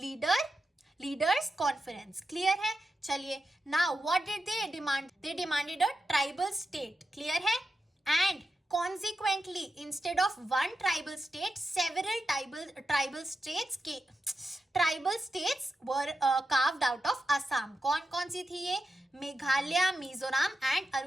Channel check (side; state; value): both; normal; correlation 0.89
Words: conference. Clear है? चलिए, now what did they demand, they demanded a tribal state. Clear है? And consequently instead of one tribal state, several tribal states were carved out of Assam. कौन सी थी ये? Meghalaya, Mizoram and